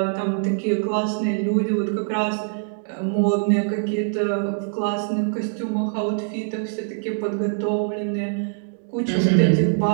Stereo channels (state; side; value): silent; left; digital silence